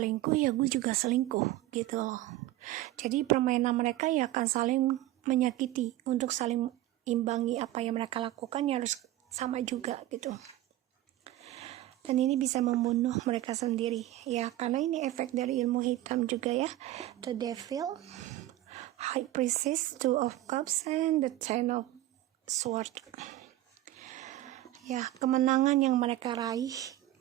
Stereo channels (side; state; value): left; quieter; 14.9 dB